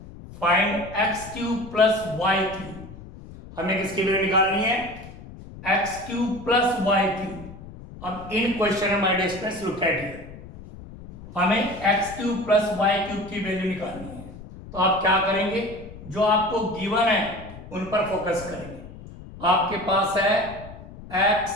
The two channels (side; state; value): left; noise; rumble, 16 dB below the sound